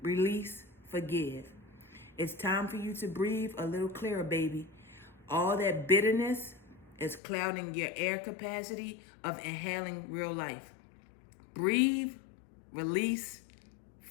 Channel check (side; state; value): right; drops out; at 7.2 s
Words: release, forgive. It's time for you to breathe a little clearer, baby. All that bitterness is clouding your air capacity of inhaling real life. Breathe, release,